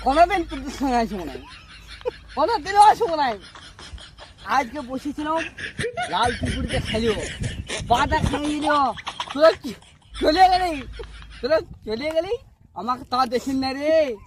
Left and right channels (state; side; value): identical; both; correlation 1.00